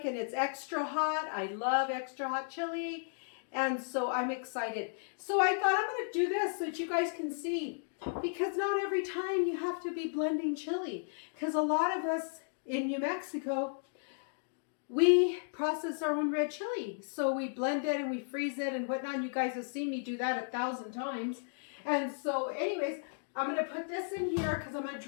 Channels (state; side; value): silent; right; digital silence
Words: and it's extra hot. I love extra hot chili. And so I'm excited. So I thought I'm going to do this so that you guys can see. Because not every time you have to be blending chili. Because a lot of us in New Mexico, we process our own red chili. So we blend it and we freeze it and whatnot. You guys have seen me do that 1,000 times. And so anyways, I'm going to put this in here because I'm going to